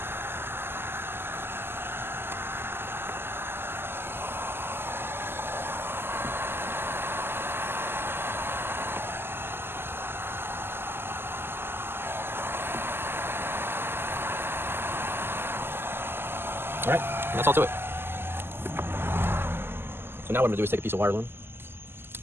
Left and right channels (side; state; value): left; late; 0.11 ms